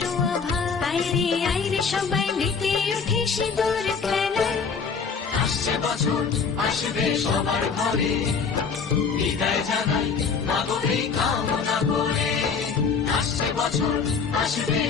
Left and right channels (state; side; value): quieter; right; 5.6 dB